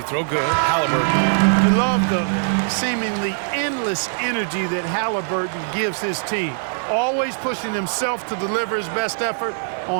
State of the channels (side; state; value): left; silent; digital silence